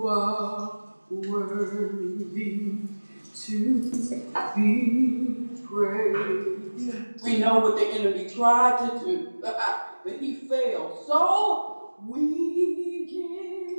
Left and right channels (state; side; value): inverted; both; correlation -1.00